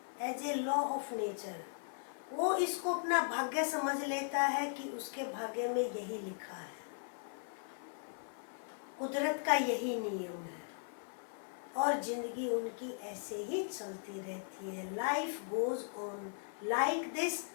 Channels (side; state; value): right; silent; 52 dB below the other